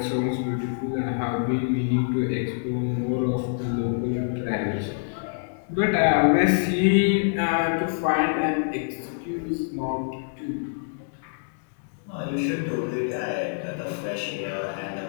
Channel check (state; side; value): silent; right; digital silence